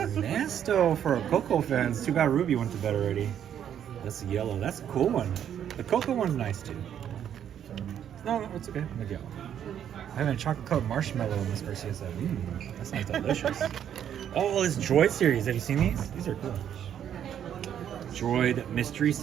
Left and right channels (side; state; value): left; quieter; 9.5 dB